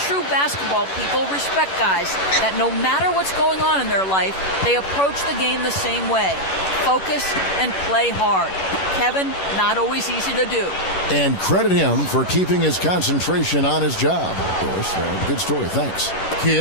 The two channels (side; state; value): right; late; 11 ms